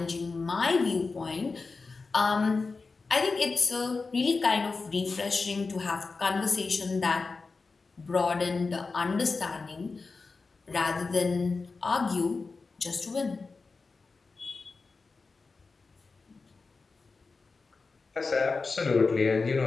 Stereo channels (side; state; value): right; quieter; 4.2 dB